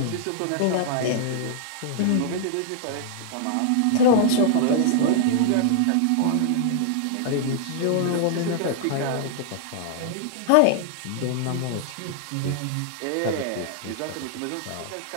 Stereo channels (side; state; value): both; different; correlation -0.01